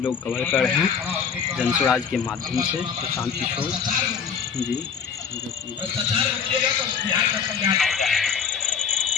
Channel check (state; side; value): quieter; right; 6.7 dB